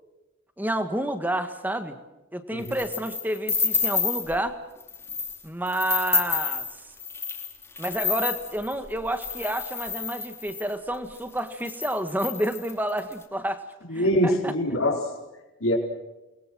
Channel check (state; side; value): normal; both; correlation 0.34